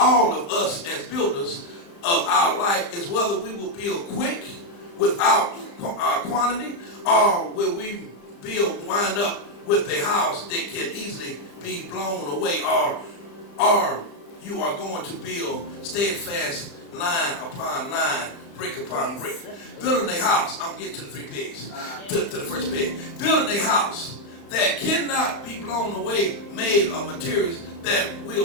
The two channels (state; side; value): late; right; 35 ms